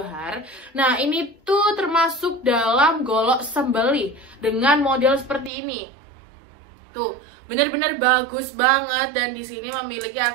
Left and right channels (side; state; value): left; drops out; at 5.5 s